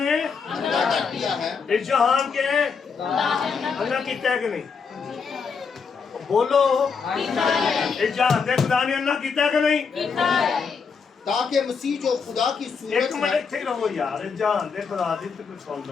अंधा कर दिया है। इस जहान के अल्लाह कीता है कि नहीं? बोलो, इस जहान के खुदा ने अल्लाह कीता है कि नहीं? تاکہ مسیح جو خدا کی ایک صورت منٹ ہے ਇੱਥੇ ਰਹੋ ਯਾਰ ਜਹਾਨ ਦੇ ਖੁਦਾ ਦੀ ਤੇ ਕੁਝ ਸੁਣ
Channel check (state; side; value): quieter; right; 5.6 dB